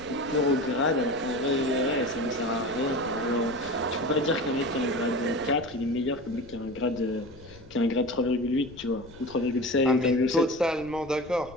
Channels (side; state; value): left; noise; rumble, 21 dB below the sound